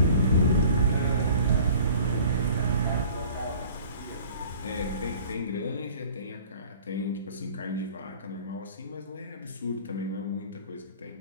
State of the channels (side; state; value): both; inverted; correlation -0.47